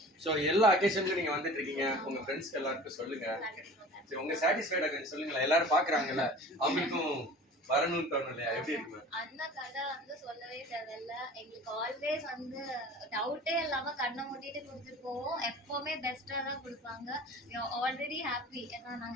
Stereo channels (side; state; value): both; normal; correlation 0.41